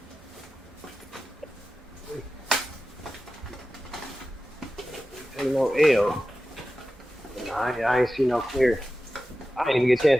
Ain't no L. I ain't see no clear. I didn't even get a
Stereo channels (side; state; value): both; normal; correlation 0.94